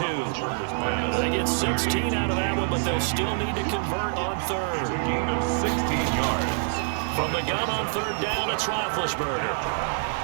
They get 16 out of that one, but they'll still need to convert on third. 16 yards. From the gun on third down, it's Roethlisberger.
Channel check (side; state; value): left; silent; 61 dB below the other